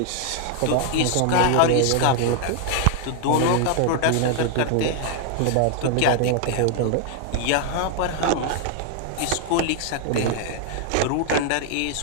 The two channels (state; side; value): different; both; correlation 0.00